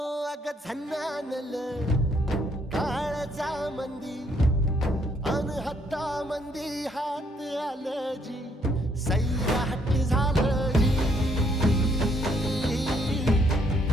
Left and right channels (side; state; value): both; normal; correlation 0.69